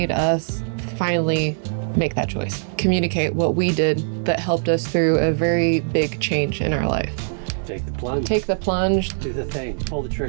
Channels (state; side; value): silent; left; 64 dB below the other